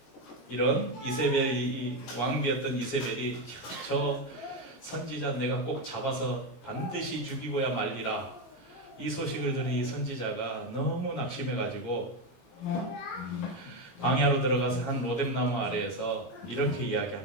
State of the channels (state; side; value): late; right; 17 ms